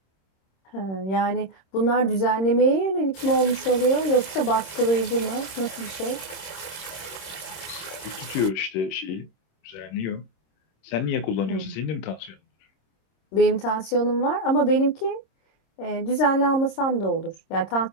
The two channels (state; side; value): late; right; 26 ms